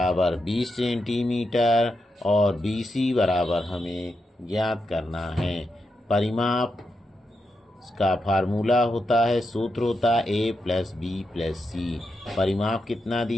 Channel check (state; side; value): normal; both; correlation 0.85